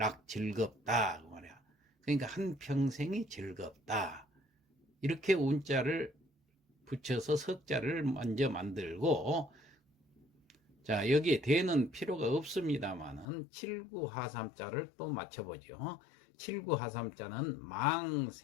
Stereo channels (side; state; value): right; drops out; at 13.2 s